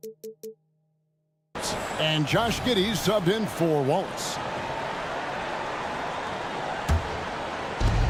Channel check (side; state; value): both; identical; correlation 1.00